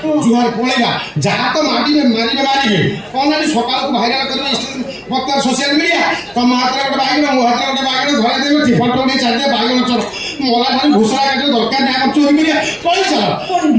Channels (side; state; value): both; identical; correlation 1.00